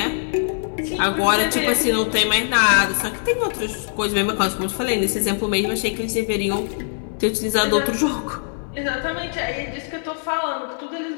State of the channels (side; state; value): right; silent; digital silence